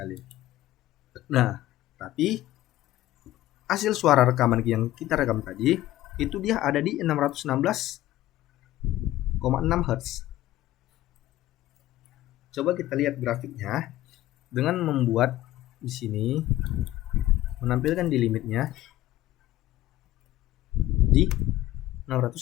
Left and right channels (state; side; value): quieter; right; 15.2 dB